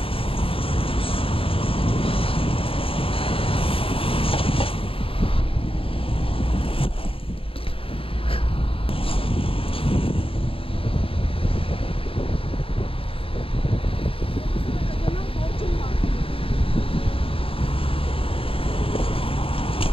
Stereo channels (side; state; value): right; late; 0.27 ms